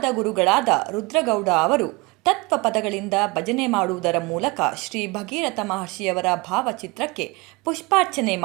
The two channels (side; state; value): left; quieter; 25.5 dB